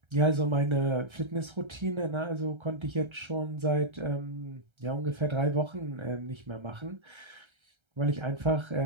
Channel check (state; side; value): late; left; 1.3 ms